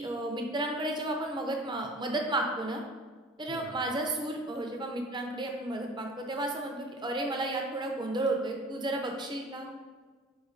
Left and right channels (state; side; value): normal; both; correlation 0.43